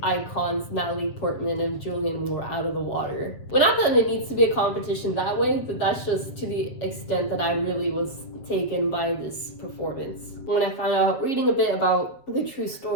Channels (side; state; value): right; late; 7.6 ms